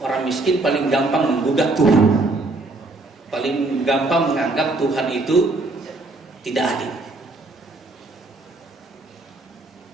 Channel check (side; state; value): left; quieter; 3.1 dB